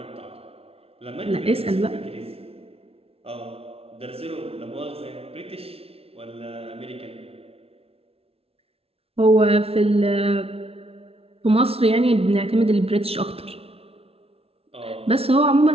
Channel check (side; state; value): left; late; 0.28 ms